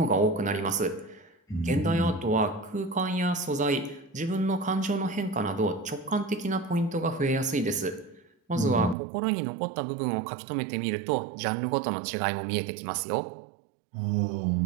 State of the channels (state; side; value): drops out; left; at 9.0 s